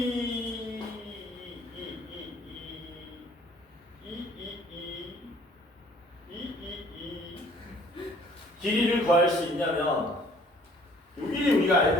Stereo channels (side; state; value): both; normal; correlation 0.57